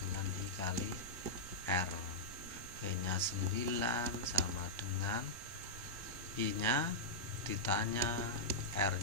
I kali R. V nya 9 sama dengan I nya ditanya R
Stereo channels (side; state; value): both; normal; correlation -0.08